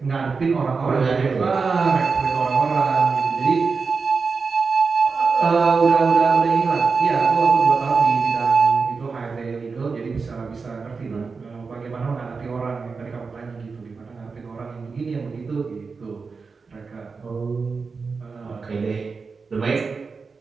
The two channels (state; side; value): quieter; left; 4.8 dB